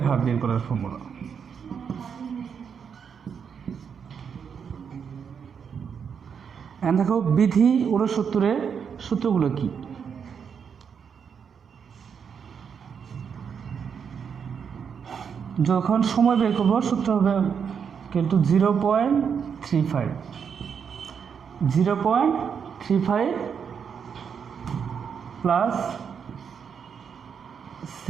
হার বের করার ফর্মুলা। দেখো বিধি 69-এর সূত্রগুলো কি। যখন সময় বের করবো সূত্র হবে কিন্তু 0.35 প্লাস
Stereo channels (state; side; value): quieter; left; 6.9 dB